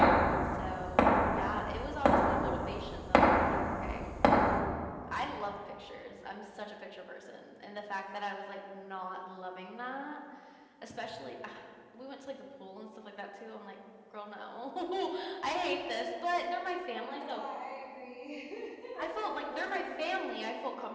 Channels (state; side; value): identical; both; correlation 1.00